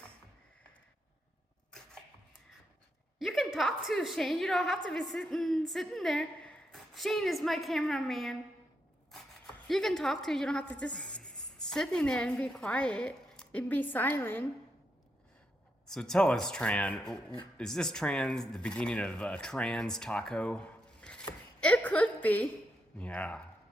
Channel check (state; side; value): normal; both; correlation 0.82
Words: You can talk to Shane. You don't have to be sitting there. Shane is my cameraman. You can talk to. You don't have to just sitting there and be quiet and be silent. So tell us, Tran, is this Tran the beginning of a Tran's taco? It could be. Yeah.